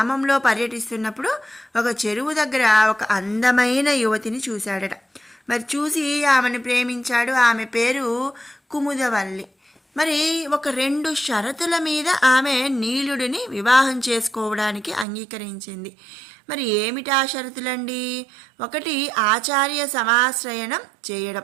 పర్యటిస్తున్నప్పుడు ఒక చెరువు దగ్గర ఒక అందమైన యువతిని చూశాడట. మరి చూసి ఆమెను ప్రేమించాడు. ఆమె పేరు కుముదవల్లి. మరి ఒక 2 షరతుల మీద ఆమె నీలుడిని వివాహం చేసుకోవడానికి అంగీకరించింది. మరి ఏమిటా షరతులండి? ఒకటి, ఆచార్య సమాశ్రయణం చేయడం.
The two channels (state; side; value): drops out; left; at 15.1 s